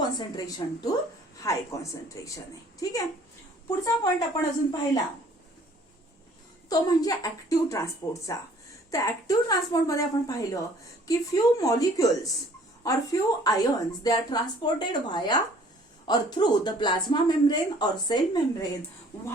to high concentration आहे. ठीक आहे. पुढचा पॉइंट आपण अजून पाहिला तो म्हणजे ऍक्टिव्ह ट्रान्सपोर्टचा. तर ऍक्टिव्ह ट्रान्सपोर्ट मध्ये आपण पाहिलं की few molecules or few ions they are transported via or through the plasma membrane or cell membrane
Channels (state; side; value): normal; both; correlation 0.56